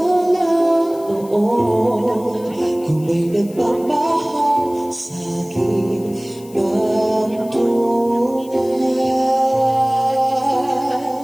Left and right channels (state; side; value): noise; left; hiss, 23 dB below the sound